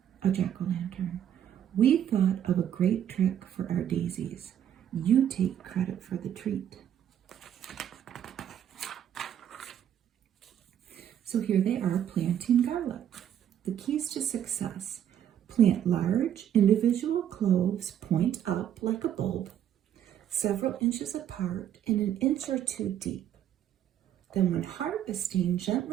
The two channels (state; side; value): quieter; left; 10.1 dB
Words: a jack-o'-lantern. We thought of a great trick for our daisies. You take credit for the treat. So here they are planting garlic. The keys to success. Plant large individual cloves point up like a bulb, several inches apart and an inch or two deep. Then when harvesting,